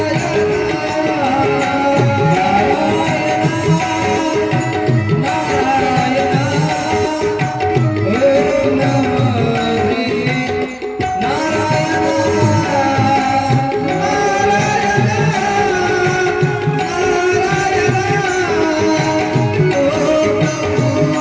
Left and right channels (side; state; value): both; identical; correlation 1.00